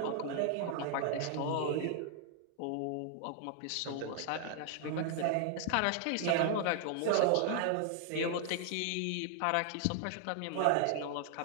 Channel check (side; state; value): both; different; correlation 0.00